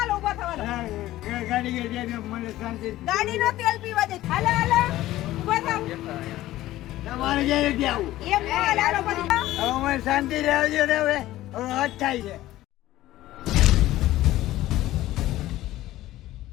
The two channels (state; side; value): quieter; right; 15.5 dB